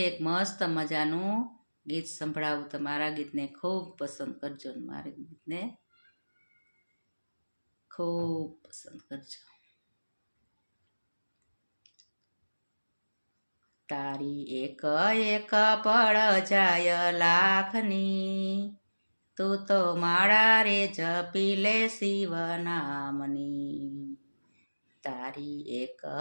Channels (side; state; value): both; inverted; correlation -1.00